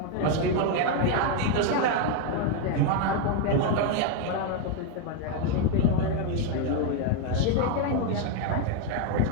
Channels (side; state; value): both; different; correlation 0.01